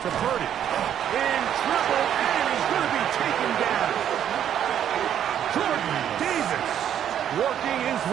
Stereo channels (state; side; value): quieter; left; 9.8 dB